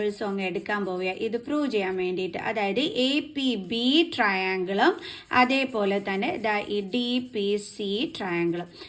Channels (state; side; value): identical; both; correlation 1.00